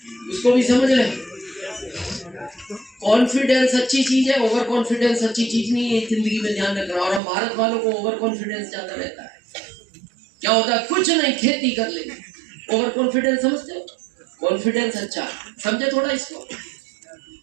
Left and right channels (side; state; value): left; drops out; at 7.2 s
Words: उसको भी समझ रहे। कॉन्फिडेंस अच्छी चीज है, ओवर कॉन्फिडेंस अच्छी चीज नहीं है, जिंदगी में ध्यान रखना। और हम भारत वालों को ओवर कॉन्फिडेंस ज्यादा रहता है। क्या होता है, कुछ नहीं खेती कर लेंगे, ओवर कॉन्फिडेंस समझते हो? कॉन्फिडेंस अच्छा समझे थोड़ा इसको।